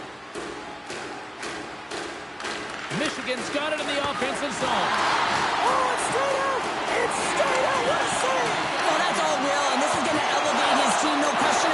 Michigan's got it in the offensive zone. Oh, it's straight out! It's straight out! What a save! Oh, that's all Will, and this is going to elevate his team, no question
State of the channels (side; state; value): both; identical; correlation 1.00